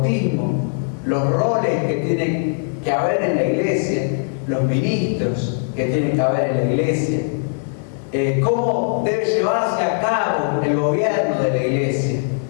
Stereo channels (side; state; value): right; silent; 66 dB below the other